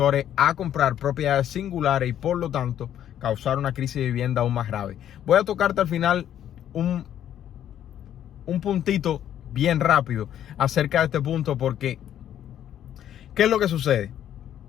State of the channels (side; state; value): right; quieter; 10.7 dB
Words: a comprar propiedades singulares y por lo tanto causar una crisis de vivienda aún más grave. Voy a tocarte al final un puntito bien rápido acerca de este punto porque ¿qué es lo que sucede?